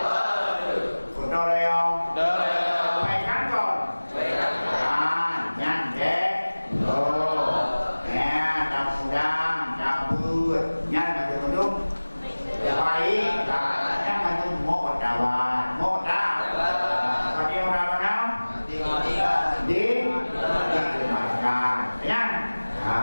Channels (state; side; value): inverted; both; correlation -1.00